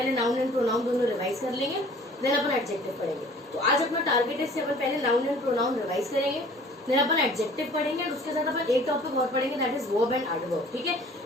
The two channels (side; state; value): both; normal; correlation 0.50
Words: नाउन एंड प्रोनाउन दोनों रिवाइज कर लेंगे, देन अपन एडजेक्टिव पढ़ेंगे। तो आज अपना टारगेट है अपन पहले नाउन एंड प्रोनाउन रिवाइज करेंगे, देन अपन एडजेक्टिव पढ़ेंगे और उसके साथ अपन एक टॉपिक और पढ़ेंगे, that is verb and adverb. ठीक है,